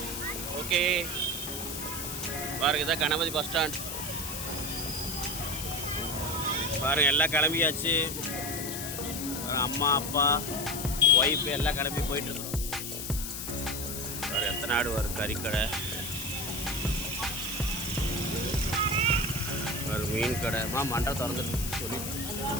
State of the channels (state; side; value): noise; left; hiss, 6 dB below the sound